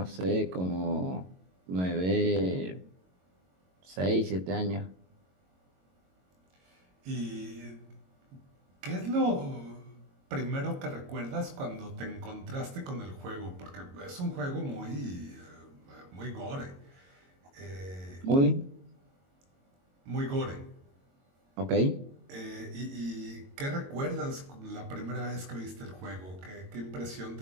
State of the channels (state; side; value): late; left; 22 ms